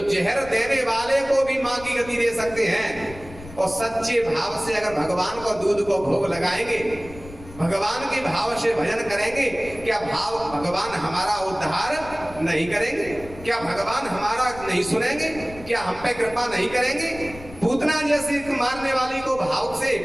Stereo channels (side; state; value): left; noise; rumble, 17 dB below the sound